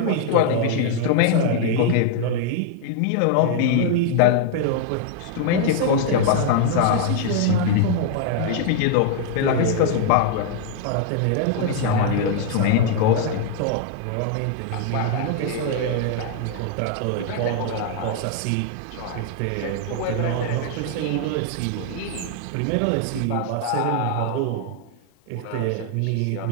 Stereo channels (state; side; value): different; both; correlation 0.00